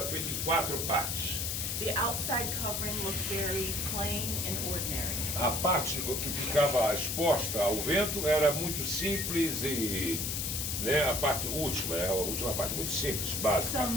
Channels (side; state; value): left; noise; hiss, 1 dB below the sound